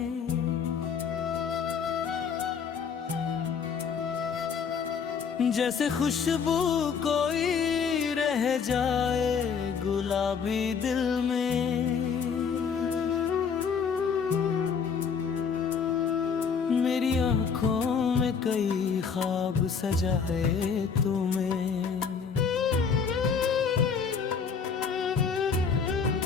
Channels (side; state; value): right; quieter; 6.3 dB